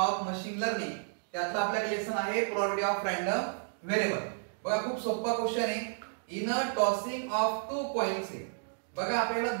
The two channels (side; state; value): left; silent; digital silence